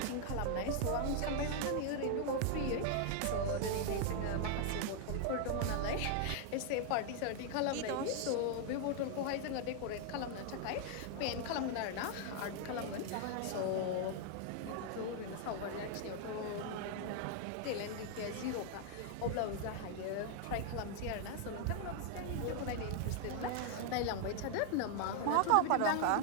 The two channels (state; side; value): different; both; correlation 0.00